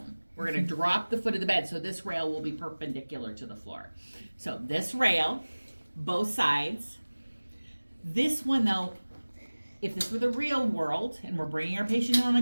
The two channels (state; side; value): inverted; both; correlation -1.00